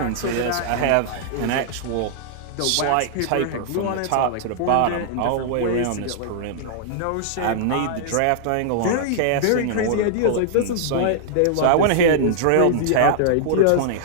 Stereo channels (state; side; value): different; both; correlation -0.01